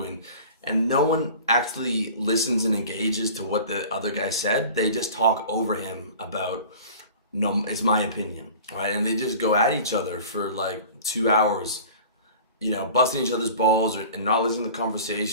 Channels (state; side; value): inverted; both; correlation -0.41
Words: And no one actually listens and engages to what the other guy said. They just talk over him about, no, it's my opinion, right? And they just go at each other for like 2 hours, busting each other's balls and not listening to the